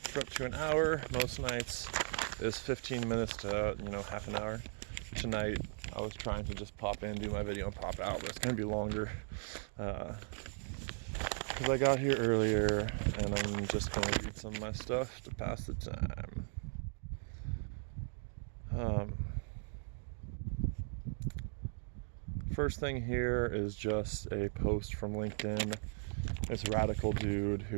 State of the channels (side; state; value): left; silent; 53 dB below the other